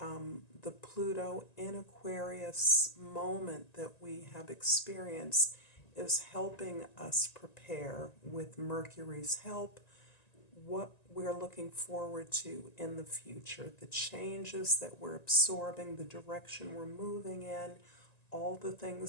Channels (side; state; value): right; late; 1.9 ms